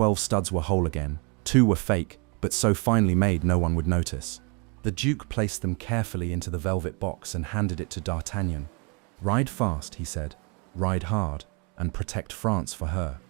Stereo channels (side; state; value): left; quieter; 32.7 dB